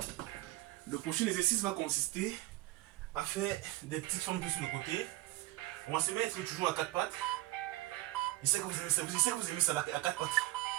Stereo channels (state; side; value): quieter; left; 18.2 dB